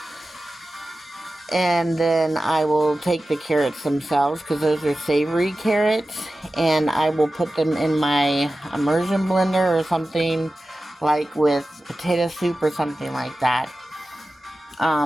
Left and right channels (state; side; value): normal; both; correlation 0.95